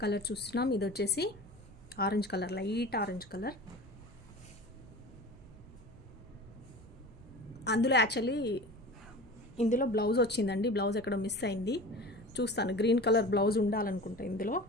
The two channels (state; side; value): normal; both; correlation 0.36